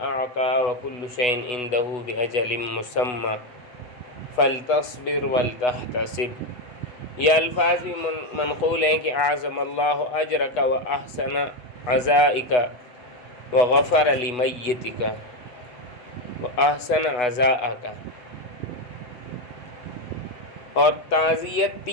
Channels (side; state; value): right; late; 8.1 ms